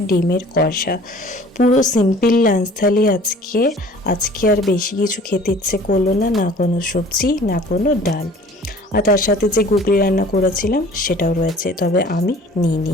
ডিমের কষা। পুরো সিম্পল লাঞ্চ থালি আজকে আর বেশি কিছু খেতে ইচ্ছে করলো না, না কোনো সবজি না কোনো ডাল। আর তার সাথে যে গুগলি রান্না করেছিলাম সেটাও রয়েছে, তবে আমি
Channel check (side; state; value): both; normal; correlation 0.49